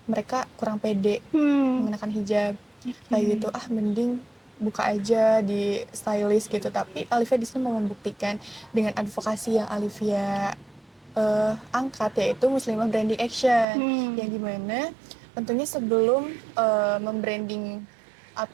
mereka kurang pede mengenakan hijab. Kayak gitu, mending buka aja di stylist gitu. Tapi Alifia di sini mau membuktikan dengan advokasi yang Alifia angkat, yaitu Muslimah Branding Action, yang dimana tentunya sebelum membranding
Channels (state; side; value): drops out; left; at 13.7 s